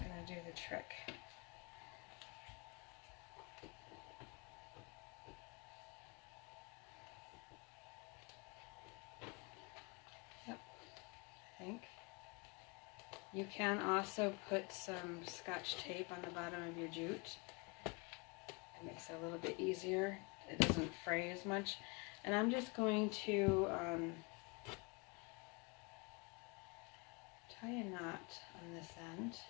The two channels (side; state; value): right; quieter; 30.0 dB